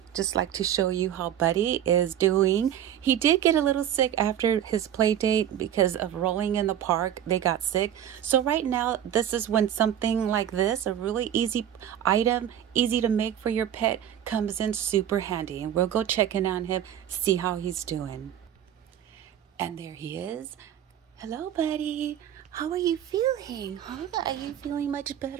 just like to show you how Buddy is doing. He did get a little sick after his play date because of rolling in the park. They got sick. So right now, this is when something like this, a really easy item, easy to make for your pet, comes in super handy. And we'll go check in on him, see how he's doing. And there he is. Hello, Buddy. How are you feeling? Huh? Are you feeling much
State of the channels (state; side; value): quieter; left; 10.5 dB